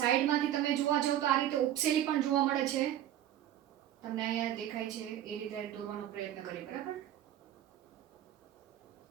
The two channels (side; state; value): left; quieter; 11.9 dB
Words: તમે જોવા જાવ તો આ રીતે ઉપસેલી પણ જોવા મળે છે. તમને અહીંયા દેખાય છે એ રીતે દોરવાનો પ્રયત્ન કરીએ, બરાબર.